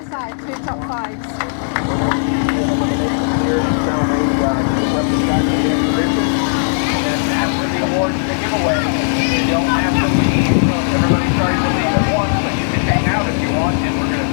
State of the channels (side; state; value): right; silent; digital silence